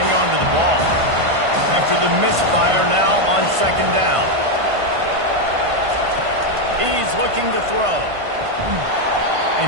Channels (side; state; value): left; late; 1.5 ms